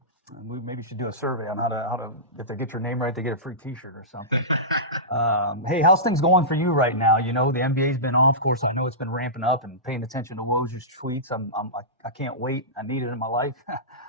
We maybe should do a survey on how to if they get your name right, they get a free T-shirt or something. Hey, how's things going for you right now? You know, the NBA's been off. Of course, I know it's been ramping up and paying attention to Woj's tweets. I can't wait. I need it in my life.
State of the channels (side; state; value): both; normal; correlation -0.18